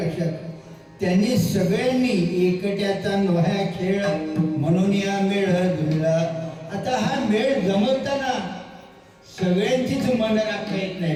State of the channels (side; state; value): both; identical; correlation 1.00